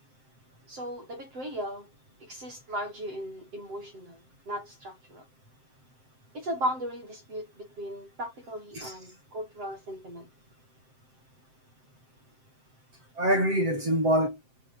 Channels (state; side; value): late; left; 7.7 ms